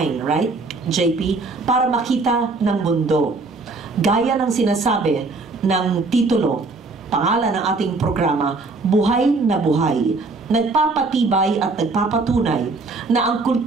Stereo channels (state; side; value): quieter; left; 3.7 dB